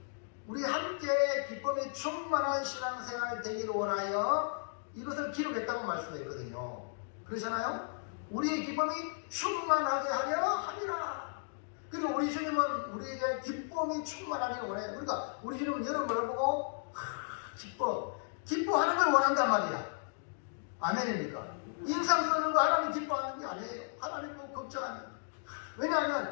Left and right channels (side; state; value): right; silent; digital silence